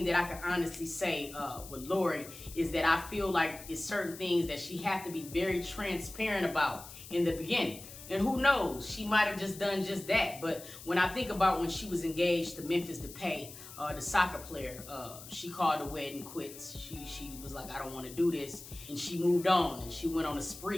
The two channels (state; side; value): noise; left; hiss, 15 dB below the sound